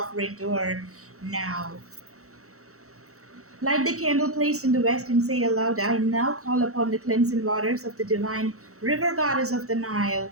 to her now. Light the candle placed in the west and say aloud, I now call upon the cleansing waters of the divine river goddess of the Nile,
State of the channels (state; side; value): late; left; 0.64 ms